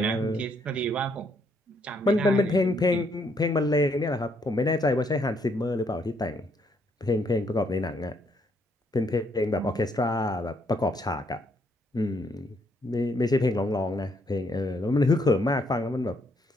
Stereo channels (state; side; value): normal; both; correlation 0.71